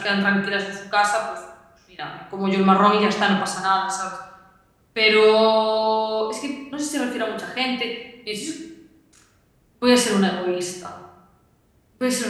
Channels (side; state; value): both; identical; correlation 1.00